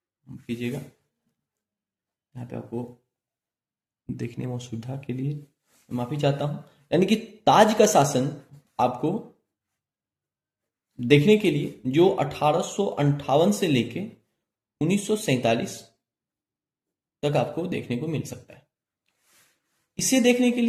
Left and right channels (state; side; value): identical; both; correlation 1.00